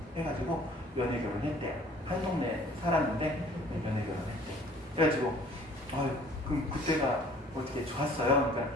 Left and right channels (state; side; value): normal; both; correlation 0.53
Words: 해가지고 연애 결혼했대요. 한 동네 살았는데 연애 결혼했대요. 그래가지고 그럼 그때가 어떻게 좋았어요? 그러니까